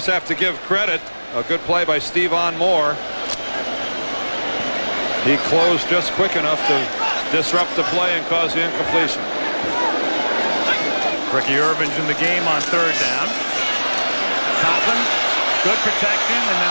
have to give credit. A good play by Stevan Moore. He closed just quick enough to disrupt the play and cause the incompletion. Ricky Irvin's in the game on 3rd down. Conklin, good protection, and then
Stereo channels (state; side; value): inverted; both; correlation -1.00